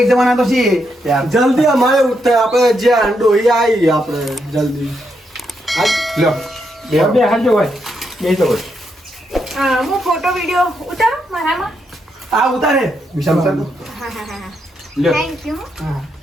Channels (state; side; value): normal; both; correlation 0.80